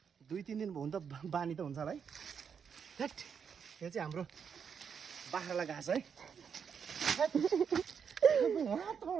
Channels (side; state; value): left; quieter; 6.9 dB